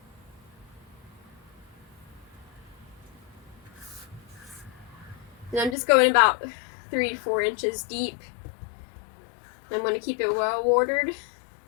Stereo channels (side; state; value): right; drops out; at 5.8 s